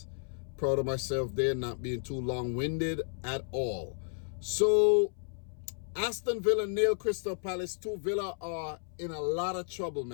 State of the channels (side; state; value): right; silent; 56 dB below the other